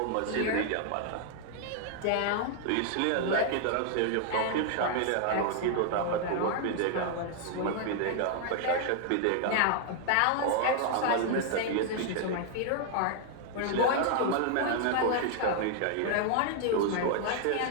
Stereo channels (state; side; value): different; both; correlation 0.00